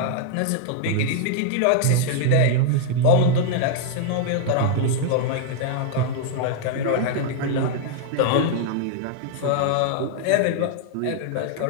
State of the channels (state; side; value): different; both; correlation -0.01